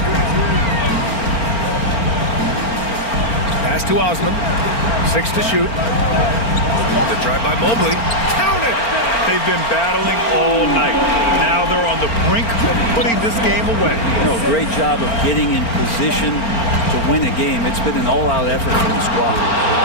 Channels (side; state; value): right; late; 4.4 ms